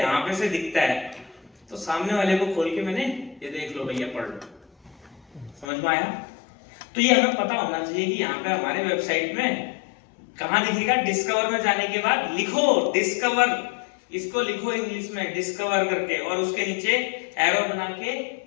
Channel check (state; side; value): drops out; right; at 5.7 s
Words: पे से दिखता है, तो सामने वाले को खोल के मैंने ये देख लो भैया, पढ़ लो। समझ में आया? तो ये हमें पता होना चाहिए कि यहाँ पे हमारे वेबसाइट में कहाँ दिखेगा। डिस्कवर में जाने के बाद लिखो डिस्कवर, इसको लिखो इंग्लिश में डिस्कवर करके, और उसके नीचे एरो बना के